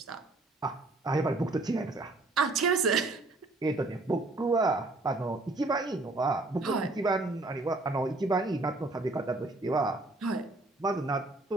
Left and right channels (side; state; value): left; quieter; 3.0 dB